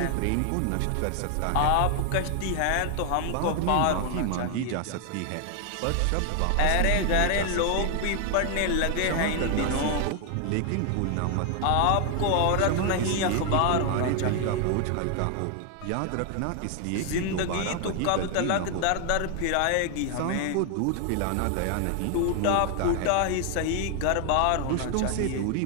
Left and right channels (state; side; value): different; both; correlation 0.00